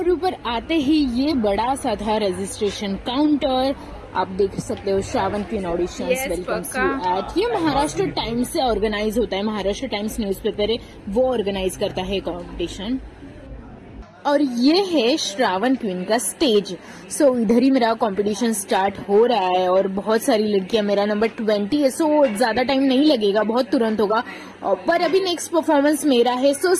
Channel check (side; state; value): both; identical; correlation 1.00